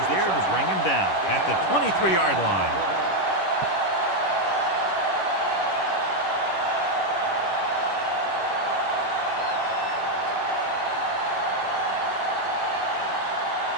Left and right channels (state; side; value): late; right; 11 ms